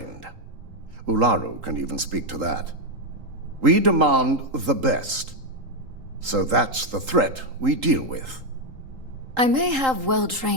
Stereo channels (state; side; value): late; left; 3.8 ms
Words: Ularu can even speak to that. We demand the best. So that's the threat we deal with. I may have